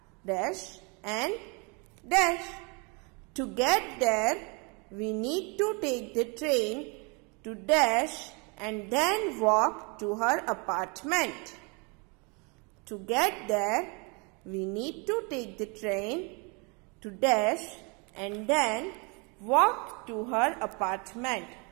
dash and dash. To get there, we need to take the train to dash and then walk to her apartment. To get there, we need to take the train to dash and then walk to her apartment.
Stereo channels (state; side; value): quieter; left; 31.9 dB